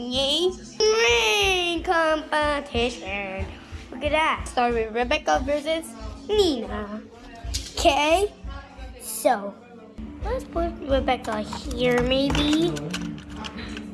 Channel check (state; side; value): identical; both; correlation 1.00